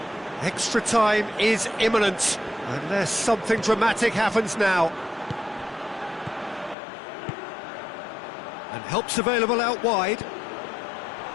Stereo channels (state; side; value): drops out; right; at 6.8 s